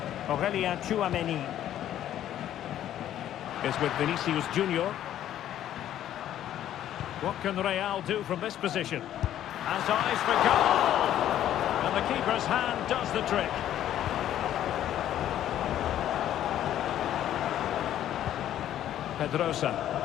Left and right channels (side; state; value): right; quieter; 11.6 dB